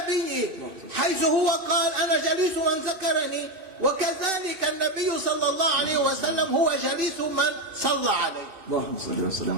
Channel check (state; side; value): late; left; 2.6 ms